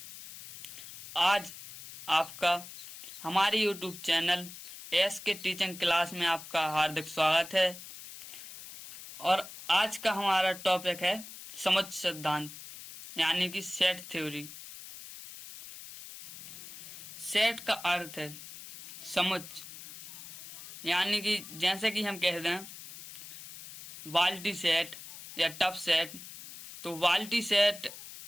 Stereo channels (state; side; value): noise; left; hiss, 14 dB below the sound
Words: आज आपका हमारे YouTube चैनल एस के टीचिंग क्लास में आपका हार्दिक स्वागत है। और आज का हमारा टॉपिक है समुच्चय सिद्धांत यानी कि सेट थ्योरी। सेट का अर्थ है समुच्चय, यानी कि जैसे कि हम कह दें बाल्टी सेट या टब सेट। तो बाल्टी सेट